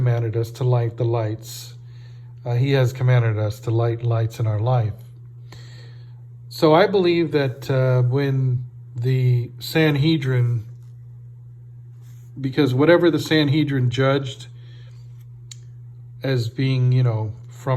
us to light the lights. He has commanded us to light lights in our life. So I believe that when the Sanhedrin, because whatever the Sanhedrin judged as being,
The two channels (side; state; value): both; identical; correlation 1.00